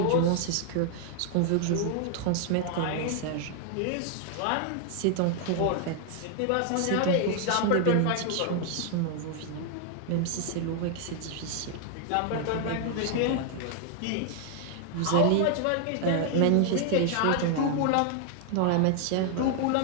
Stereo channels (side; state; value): both; different; correlation 0.00